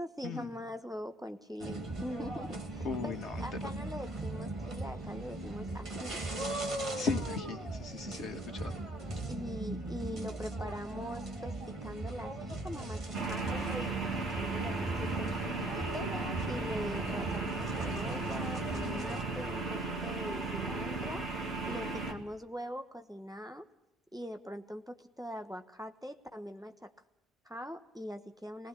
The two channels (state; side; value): normal; both; correlation 0.61